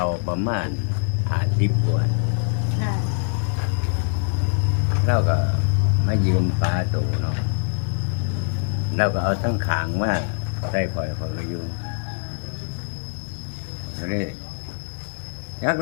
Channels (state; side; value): silent; right; digital silence